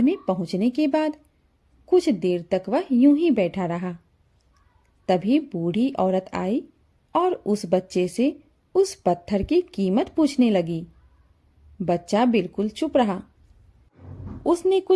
में पहुंचने के बाद कुछ देर तक वह यूं ही बैठा रहा। तभी बूढ़ी औरत आई और उस बच्चे से उस पत्थर की कीमत पूछने लगी। बच्चा बिल्कुल चुप रहा। उसने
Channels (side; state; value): both; identical; correlation 1.00